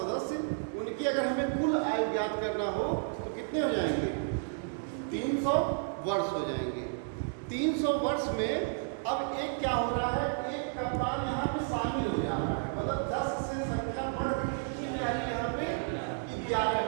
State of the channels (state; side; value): silent; left; 56 dB below the other